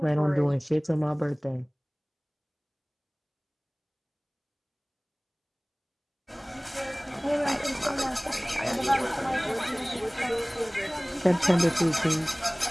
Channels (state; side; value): identical; both; correlation 1.00